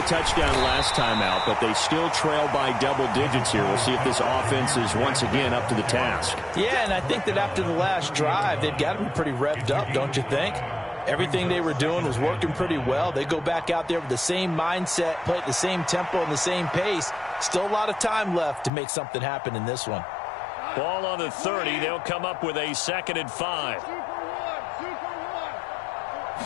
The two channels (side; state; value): right; drops out; at 18.7 s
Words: touchdown last time out, but they still trail by double digits here. We'll see if this offense is once again up to the task. Yeah, and I think that after the last drive, they've got to be pretty revved up, don't you think? Everything they were doing was working pretty well. They go back out there with the same mindset, play at the same tempo and the same pace. Still a lot of time left to make something happen in this one. Ball on the 30. They'll come up with a 2nd and 5.